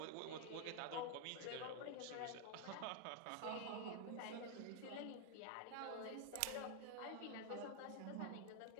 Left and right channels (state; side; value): different; both; correlation 0.00